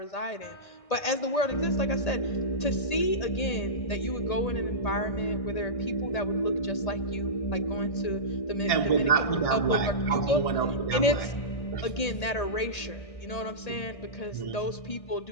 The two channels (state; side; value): late; right; 1.8 ms